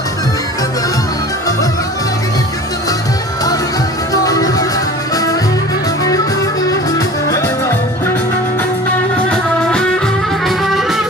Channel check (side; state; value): both; normal; correlation 0.40